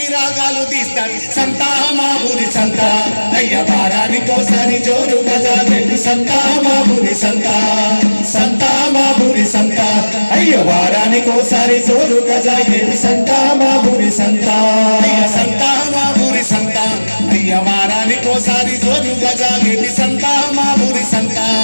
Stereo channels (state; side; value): inverted; both; correlation -1.00